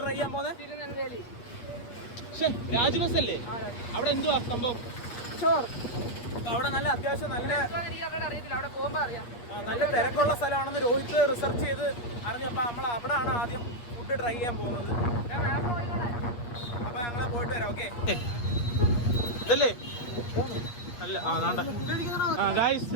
ട്രൈ ചെയ്യാൻ പോകുന്നത്? തിരുനെൽവേലി. രാജ്ബസ് അല്ലേ? അവിടെ എന്തുവാ സംഭവം? അവിടെ നല്ല അത്യാവശ്യം നല്ല അറിയത്തില്ല, അവിടെ പോകുമ്പോ അറിയാം. നല്ല തിരക്കുള്ള സ്ഥലമാണെന്ന് രോഹിത് റിസർച്ച് ചെയ്ത് അറിഞ്ഞപ്പോ നമ്മൾ അവിടെയാണ് ആദ്യം ഫുഡ് ട്രൈ ചെയ്യാൻ പോകുന്നത്. അപ്പൊ ഞങ്ങള് പോയിട്ട് വരാം. ഓക്കെ ഇതല്ലേ? അല്ല, ഗായ്സ്,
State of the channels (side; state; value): right; late; 8.4 ms